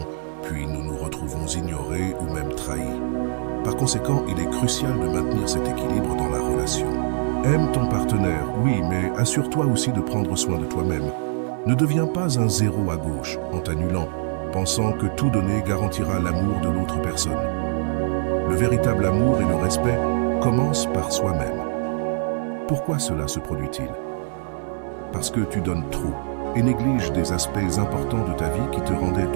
puis nous nous retrouvons ignorés ou même trahis. Par conséquent, il est crucial de maintenir cet équilibre dans la relation. Aime ton partenaire, oui, mais assure-toi aussi de prendre soin de toi-même. Ne deviens pas un zéro à gauche en t'annulant, pensant que tout donner garantira l'amour de l'autre personne. Le véritable amour et le respect commencent par soi-même. Pourquoi cela se produit-il? Parce que tu donnes trop et négliges des aspects importants de ta vie qui te rendaient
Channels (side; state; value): left; silent; digital silence